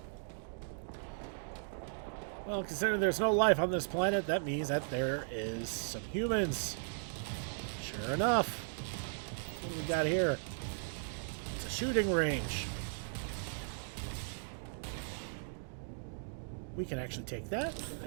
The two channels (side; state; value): left; silent; digital silence